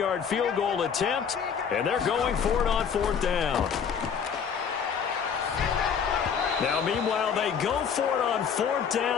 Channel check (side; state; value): right; quieter; 7.0 dB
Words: field goal attempt, and they're going for it on 4th down. Now, meanwhile, they go for it on 4th